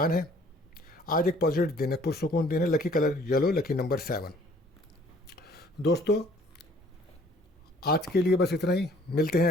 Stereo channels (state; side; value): normal; both; correlation 0.57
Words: ہے، آج ایک پازیٹیو دن ہے، پرسکون دن ہے، لکی کلر یلو، لکی نمبر 7۔ دوستو آج کے لیے بس اتنا ہی، ملتے ہیں